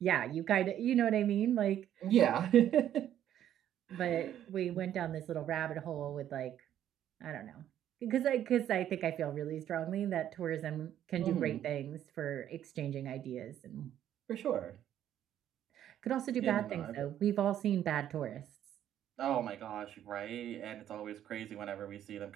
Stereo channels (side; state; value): left; quieter; 11.0 dB